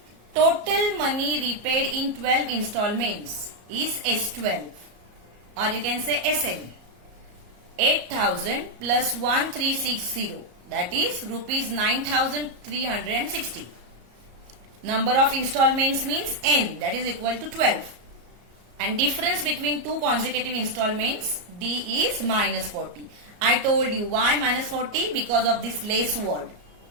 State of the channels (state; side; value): late; left; 33 ms